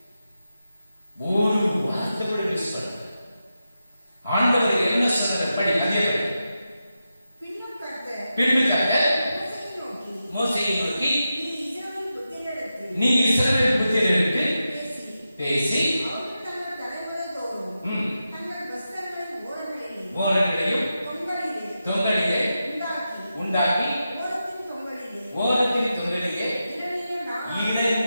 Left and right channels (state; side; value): inverted; both; correlation -0.90